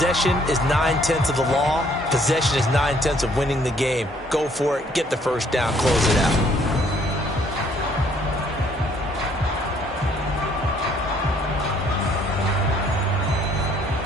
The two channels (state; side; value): normal; both; correlation 0.63